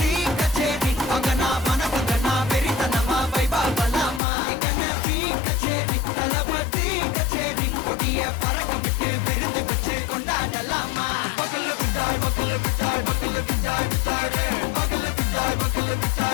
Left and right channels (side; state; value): right; drops out; at 4.2 s